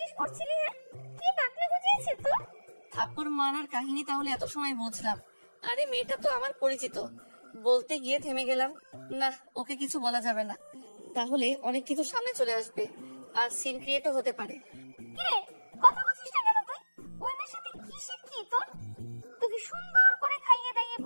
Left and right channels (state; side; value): inverted; both; correlation -1.00